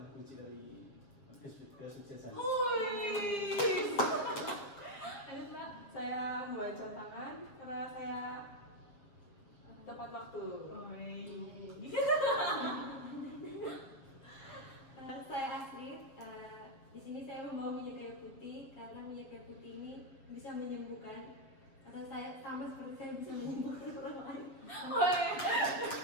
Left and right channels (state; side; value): late; right; 7.4 ms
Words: kunci dari kesuksesan. Lanjut Mbak. Saya membawa jam tangan karena saya tepat waktu. Saya Astrid. Di sini saya membawa minyak kayu putih karena minyak kayu putih ini bisa menyembuhkan. Karena saya sama seperti saya bisa menyembuhkan orang lain.